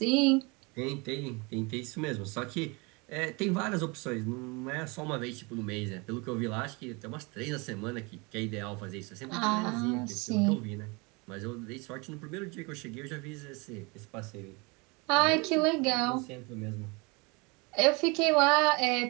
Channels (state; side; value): quieter; left; 28.1 dB